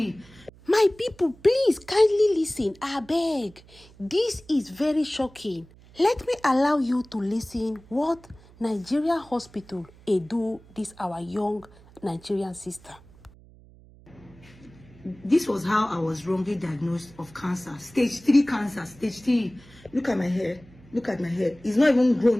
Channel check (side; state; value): right; noise; hum, 24 dB below the sound